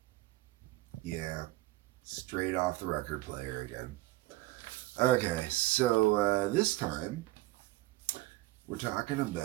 Yeah, straight off the record player again. Okay, so this time we're talking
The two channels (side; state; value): left; quieter; 18.6 dB